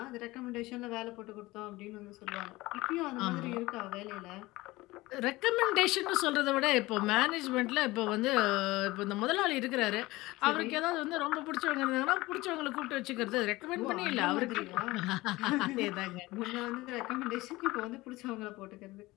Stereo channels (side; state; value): right; quieter; 19.9 dB